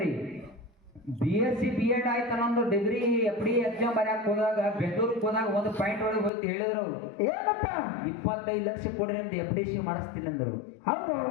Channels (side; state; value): right; drops out; at 6.3 s